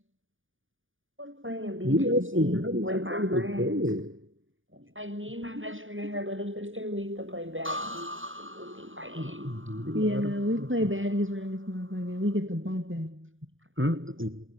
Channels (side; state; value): left; late; 0.58 ms